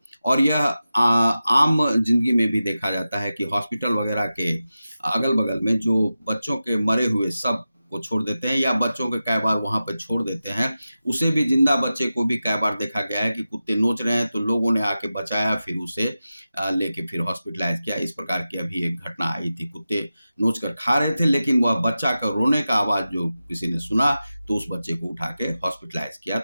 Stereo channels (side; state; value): both; inverted; correlation -0.93